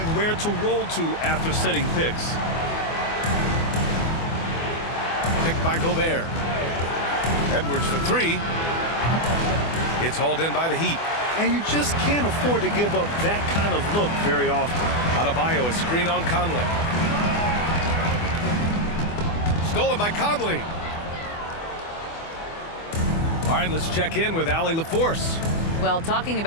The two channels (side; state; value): right; late; 24 ms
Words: where to roll to after setting picks. Picked by Gobert. Edwards for 3. It's hauled in by the Heat. And you just can't afford to give up that kind of look very often. Adebayo, a screen on Conley. Stolen by Conley. All right, let's check in with Allie LaForce. Well, talking